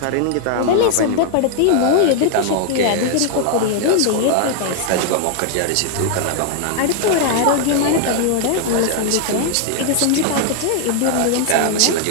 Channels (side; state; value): both; different; correlation 0.00